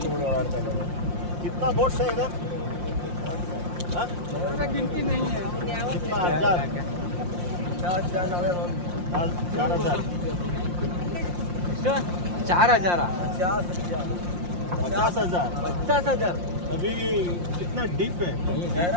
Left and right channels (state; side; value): late; left; 5.7 ms